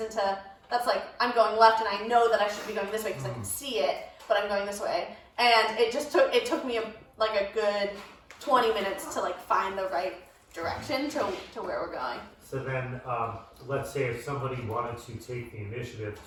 into, that's I'm going left, and I know that I should be going this way because I can see it, but I'm going this way. And it took me a good 20 minutes to find the right direction to where we're going. So then, let's say if somebody wanted to take the initiative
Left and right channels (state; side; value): identical; both; correlation 1.00